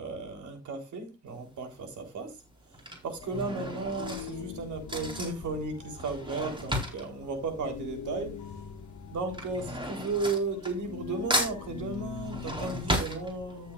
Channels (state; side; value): normal; both; correlation 0.15